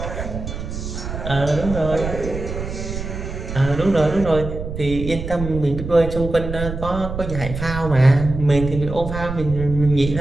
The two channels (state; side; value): noise; right; rumble, 7 dB below the sound